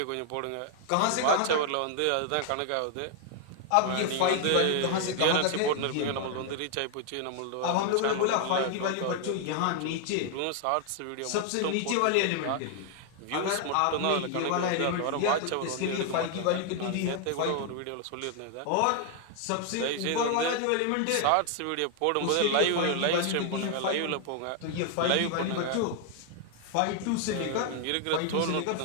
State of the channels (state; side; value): different; both; correlation 0.00